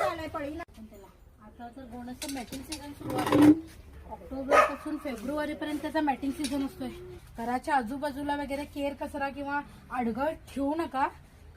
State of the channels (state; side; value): identical; both; correlation 1.00